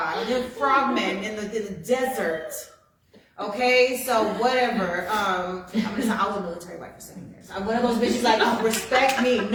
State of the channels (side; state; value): both; identical; correlation 1.00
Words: The frogmen in the desert. Okay, so whatever. I'm gonna say I was a military wife for 7 years. I'm one of those bitches like, oh, respect me.